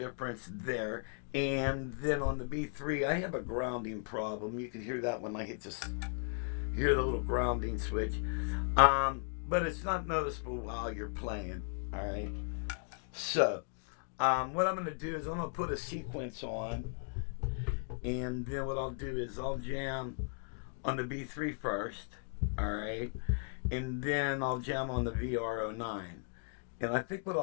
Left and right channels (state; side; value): silent; right; 54 dB below the other